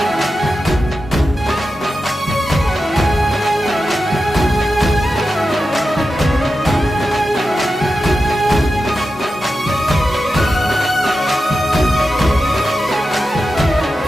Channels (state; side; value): normal; both; correlation 0.91